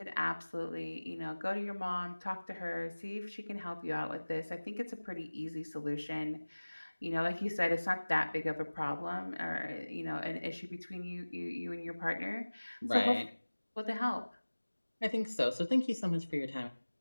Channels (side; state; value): both; inverted; correlation -1.00